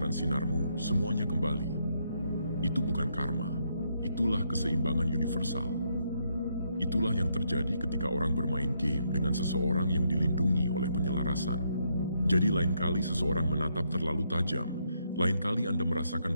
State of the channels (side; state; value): both; inverted; correlation -0.76